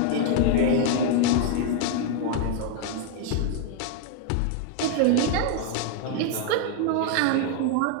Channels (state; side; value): different; both; correlation 0.00